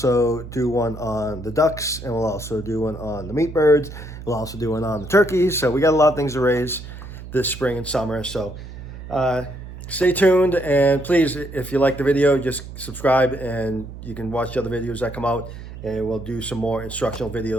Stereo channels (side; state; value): right; noise; hum, 12 dB below the sound